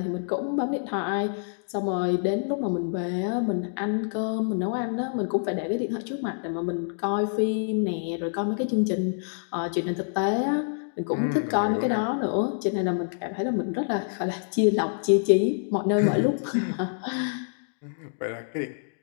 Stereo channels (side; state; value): right; silent; digital silence